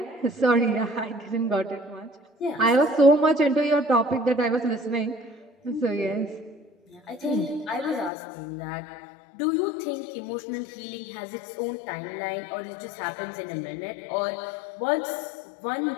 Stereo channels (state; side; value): drops out; right; at 8.1 s